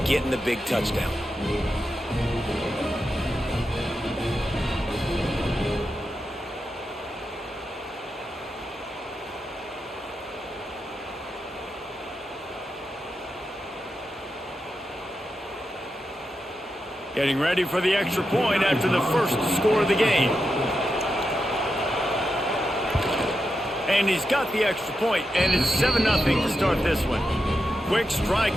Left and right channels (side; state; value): both; normal; correlation 0.87